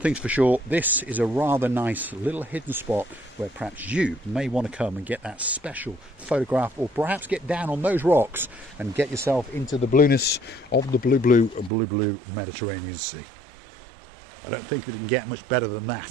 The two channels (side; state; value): left; drops out; at 11.7 s